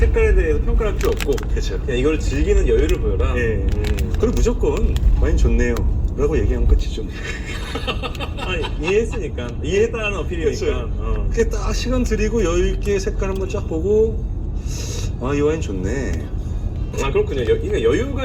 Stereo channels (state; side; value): identical; both; correlation 1.00